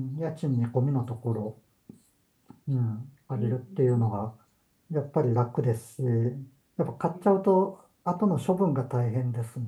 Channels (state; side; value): identical; both; correlation 1.00